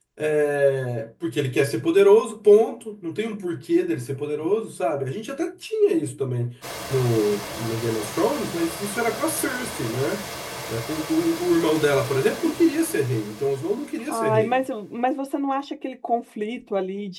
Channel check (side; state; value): both; identical; correlation 1.00